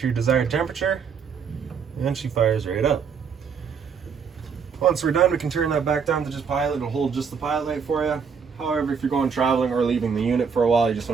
your desired temperature, and she fires right up. Once we're done, we can turn that back down to just pilot. It'll hold just the pilot light for you. However, if you're going traveling or leaving the unit for a while, you just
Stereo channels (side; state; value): left; quieter; 6.3 dB